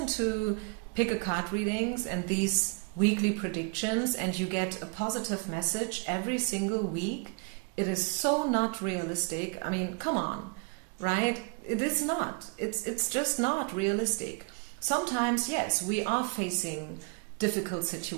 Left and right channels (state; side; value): quieter; left; 32.5 dB